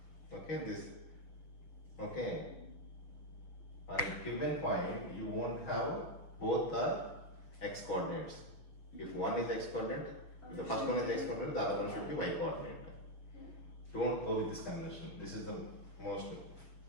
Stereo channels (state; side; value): late; right; 6.6 ms